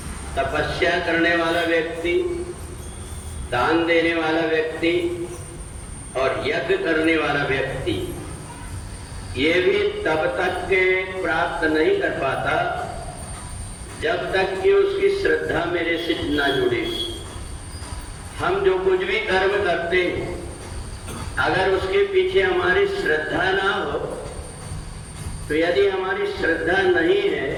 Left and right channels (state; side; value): identical; both; correlation 1.00